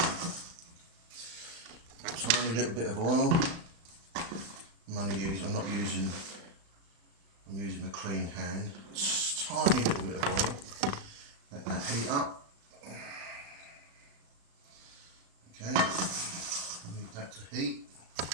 tiny little bit of oil. I'm using a clean hand. Just tiny little bit of oil. Let that heat up. Okay, move that to heat.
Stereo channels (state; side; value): late; left; 36 ms